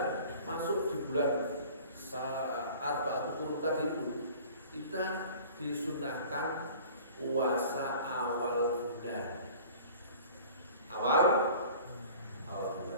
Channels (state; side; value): inverted; both; correlation -0.45